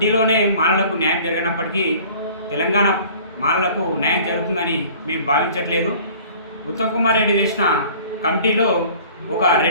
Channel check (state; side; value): inverted; both; correlation -0.48